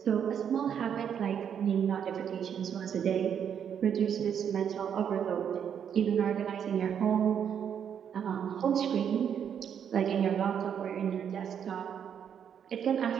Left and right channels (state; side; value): quieter; left; 8.3 dB